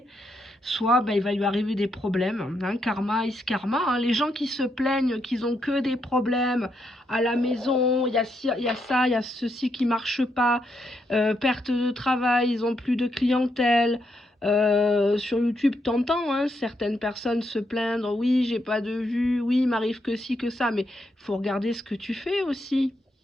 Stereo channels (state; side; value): normal; both; correlation 0.79